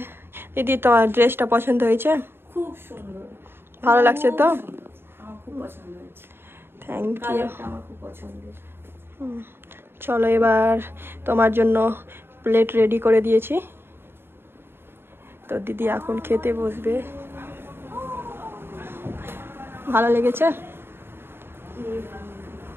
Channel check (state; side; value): late; left; 0.11 ms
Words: দিদি তোমার ড্রেসটা পছন্দ হয়েছে? খুব সুন্দর, ভালো লাগছে তো? আমার খুব পছন্দ হয়েছে। Thank you. আমার খুব পছন্দের। চলো এবার তোমার জন্য প্লেট রেডি করে দিয়েছি, তো দিদি এখন খেতে বসবে। ভালো লেগেছে?